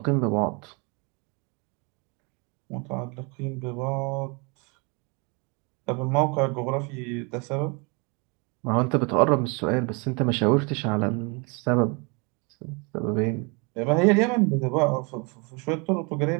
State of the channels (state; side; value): quieter; left; 31.2 dB